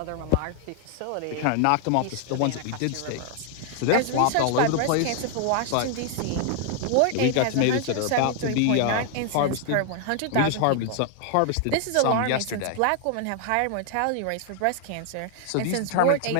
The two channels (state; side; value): different; both; correlation 0.00